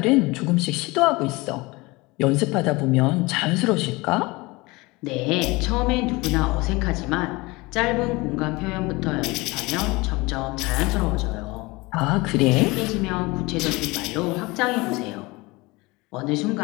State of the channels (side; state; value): right; quieter; 23.3 dB